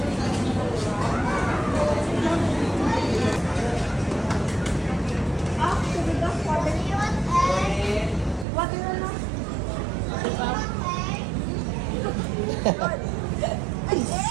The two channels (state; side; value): drops out; left; at 8.5 s